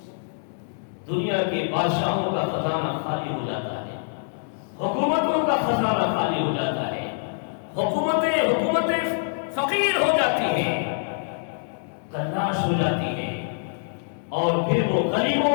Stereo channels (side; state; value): right; silent; 62 dB below the other